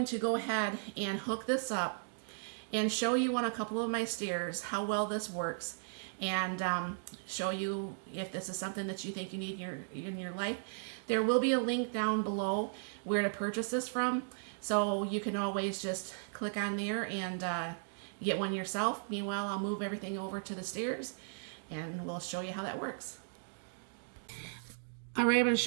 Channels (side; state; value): left; silent; digital silence